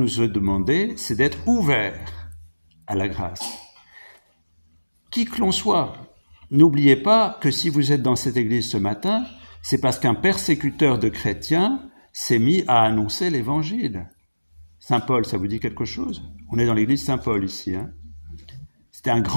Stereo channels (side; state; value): both; inverted; correlation -1.00